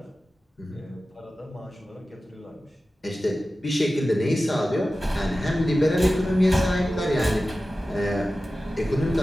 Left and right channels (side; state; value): both; normal; correlation 0.95